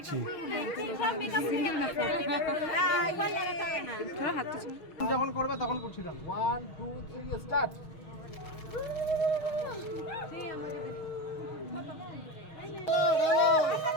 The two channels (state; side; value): late; right; 6.4 ms